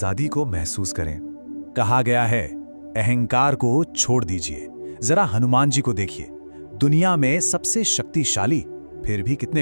को महसूस करें। कहा गया है, अहंकार को छोड़ दीजिए। जरा हनुमान जी को देखिए, दुनिया में सबसे शक्तिशाली, फिर भी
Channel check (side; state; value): both; inverted; correlation -1.00